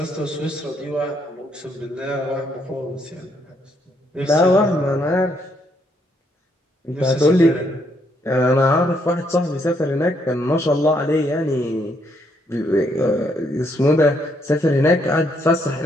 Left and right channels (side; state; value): both; normal; correlation 0.73